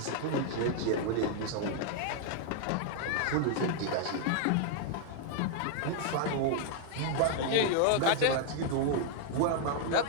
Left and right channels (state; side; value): different; both; correlation 0.00